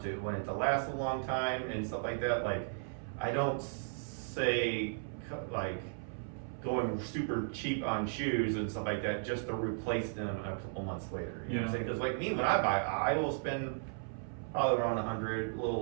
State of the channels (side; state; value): left; silent; 54 dB below the other